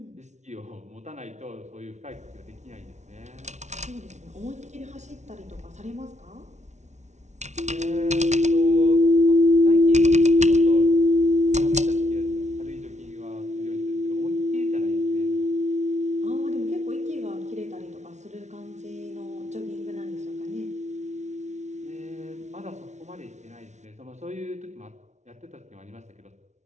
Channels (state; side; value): late; left; 0.33 ms